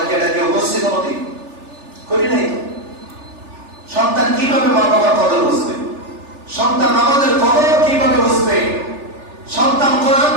কি এটাকে উপস্থিত কোনদিন করি নাই? সন্তান কিভাবে মা বাবার কদর বুঝবে? সন্তান আমাদের কদর কিভাবে বুঝবে? সন্তান কোরআন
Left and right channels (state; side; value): late; left; 3.4 ms